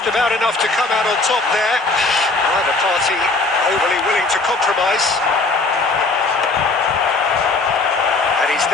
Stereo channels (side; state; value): right; quieter; 3.4 dB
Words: about enough to come out on top there. Neither party overly willing to compromise. And he's